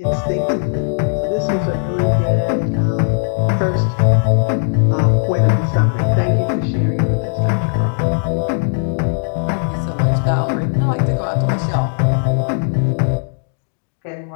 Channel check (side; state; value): right; silent; digital silence